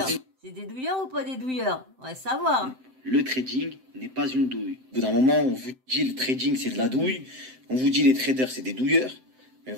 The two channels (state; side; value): late; left; 7.7 ms